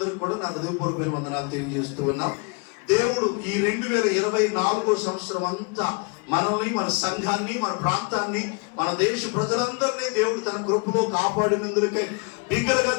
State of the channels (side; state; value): right; quieter; 32.8 dB